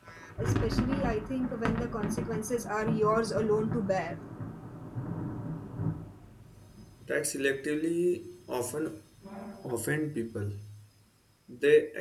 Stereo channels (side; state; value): both; identical; correlation 1.00